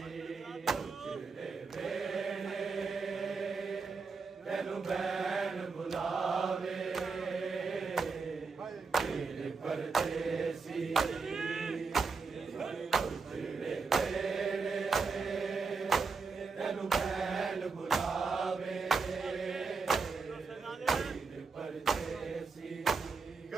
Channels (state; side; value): quieter; left; 4.7 dB